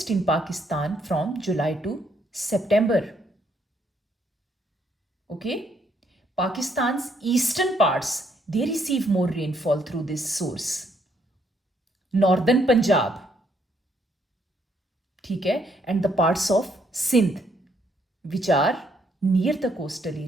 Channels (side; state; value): both; normal; correlation 0.71